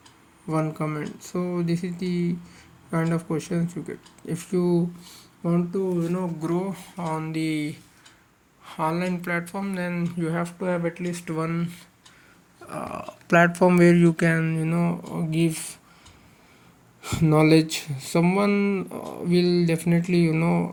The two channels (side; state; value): both; identical; correlation 1.00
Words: one comment. So this is the kind of questions you get. If you want to grow on the online platform, then you have to have at least one platform where you can give knowledge. Someone will definitely